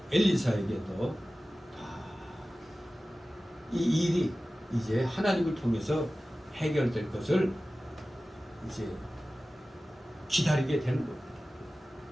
엘리사에게 또 이 일이 이제 하나님을 통해서 해결될 것을 이제 기다리게 되는 겁니다.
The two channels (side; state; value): both; normal; correlation 0.96